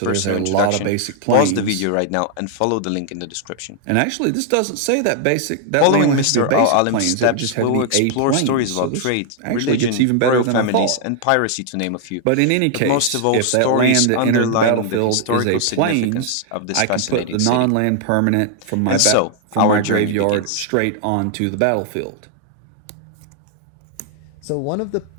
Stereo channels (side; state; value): both; different; correlation 0.00